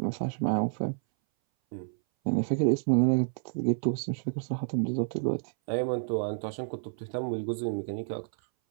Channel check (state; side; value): silent; left; 58 dB below the other